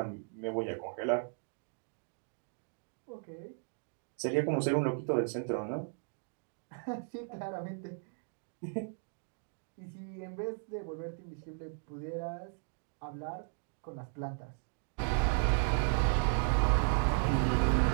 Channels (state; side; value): silent; left; 54 dB below the other